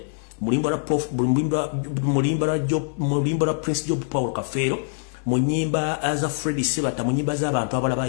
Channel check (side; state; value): right; silent; 63 dB below the other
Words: mu luyimba lwa Prince Job Paul Kafeero mu nnyimba za Freddy Sebata mu nnyimba z'abantu abalala